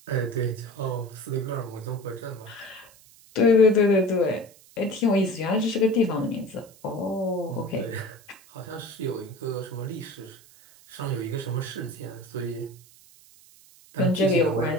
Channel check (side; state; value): right; noise; hiss, 25 dB below the sound